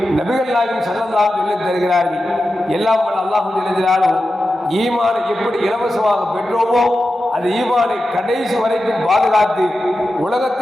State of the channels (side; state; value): both; normal; correlation 0.91